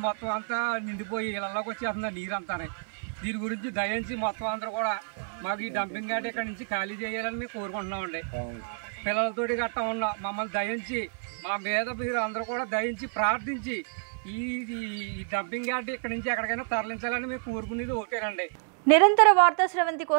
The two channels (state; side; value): silent; left; 57 dB below the other